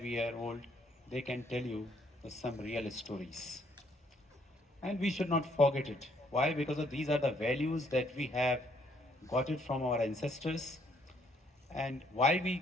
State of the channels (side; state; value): both; normal; correlation 0.68